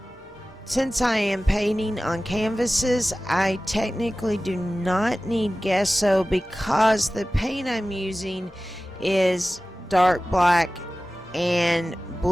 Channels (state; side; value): normal; both; correlation 0.96